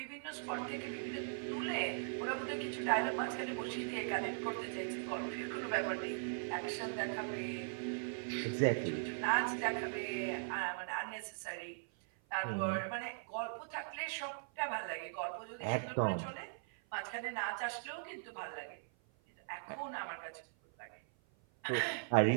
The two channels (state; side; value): silent; left; 51 dB below the other